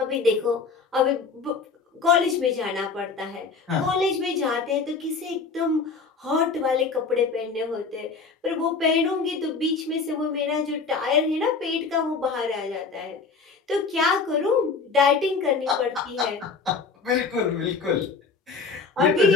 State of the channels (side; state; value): right; quieter; 4.7 dB